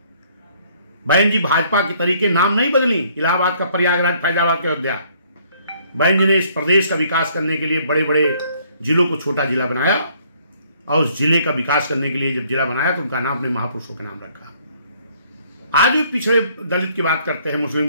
बहन जी भाजपा के तरीके नाम नहीं बदली, इलाहाबाद का प्रयागराज, फैजाबाद का अयोध्या। बहन जी ने इस प्रदेश का विकास करने के लिए बड़े बड़े जिलों को छोटा जिला बनाया, और उस जिले का विकास करने के लिए जब जिला बनाया तो उनका नाम अपने महापुरुषों के नाम रखा। आज भी पिछड़े दलित की बात करते हैं, मुस्लिम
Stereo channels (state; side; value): inverted; both; correlation -0.64